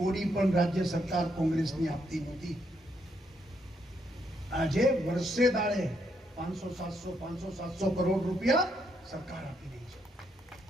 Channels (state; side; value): normal; both; correlation 0.76